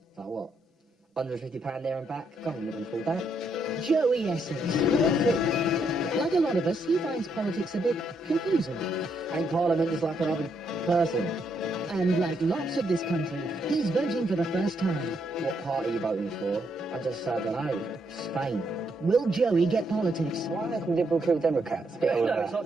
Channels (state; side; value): normal; both; correlation 0.76